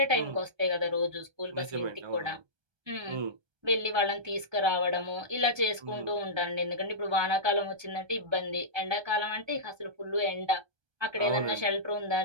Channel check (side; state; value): left; late; 1.3 ms